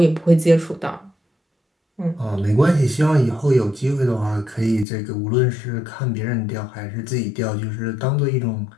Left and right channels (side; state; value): right; drops out; at 4.9 s